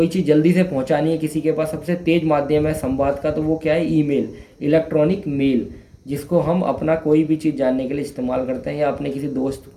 चीज़ जल्दी से पहुंचानी है किसी के पास, सबसे तेज माध्यम है संवाद का, तो वो क्या है, ईमेल, इलेक्ट्रॉनिक मेल, जिसको हम अपना कोई भी चीज़ जानने के लिए इस्तेमाल करते हैं या अपने किसी दोस्त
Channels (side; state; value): both; identical; correlation 1.00